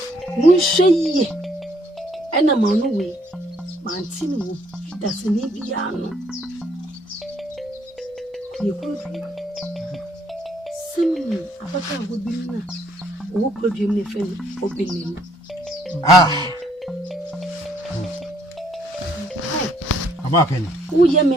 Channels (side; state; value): both; normal; correlation 0.66